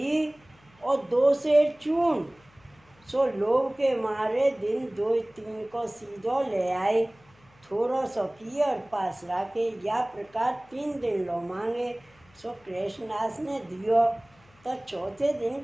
और 2 शेर चून। सो लोभ के मारे दिन 2-3 को सीधो ले आए। थोड़ो सो किए और पास रखे। या प्रकार 3 दिन लो मांगे। सो कृष्णदास ने दियो। तो चौथे दिन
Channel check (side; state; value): left; noise; hum, 30 dB below the sound